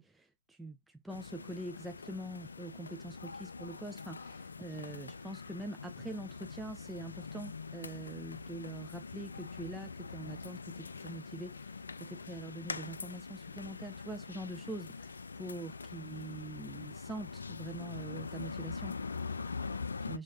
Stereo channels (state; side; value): normal; both; correlation -0.08